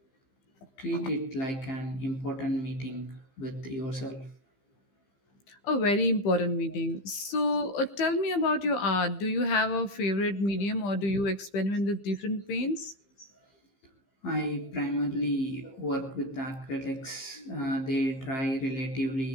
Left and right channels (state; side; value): late; right; 15 ms